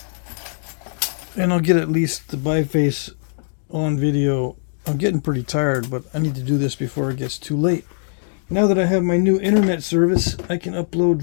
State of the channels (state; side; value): silent; right; 65 dB below the other